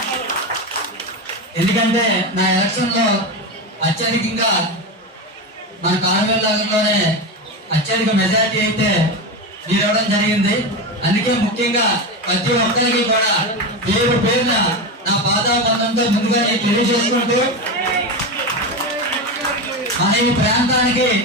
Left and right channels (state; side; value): normal; both; correlation 0.18